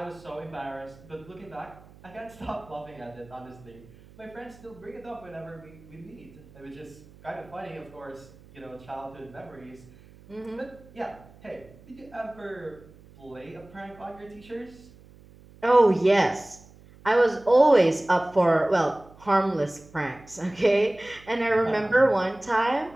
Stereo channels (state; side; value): noise; right; hum, 23 dB below the sound